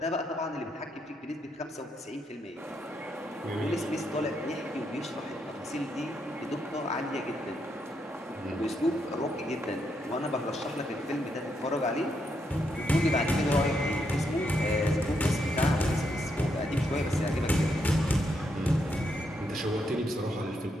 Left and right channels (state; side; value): normal; both; correlation 0.79